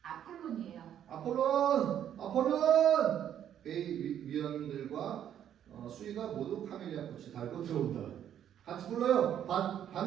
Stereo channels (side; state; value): left; quieter; 10.0 dB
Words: 아폴론이에요. 아폴론! 회의 위원들과 수위가 모두 카멜리아 꽃을 달고 들어온다. 같이 불러요.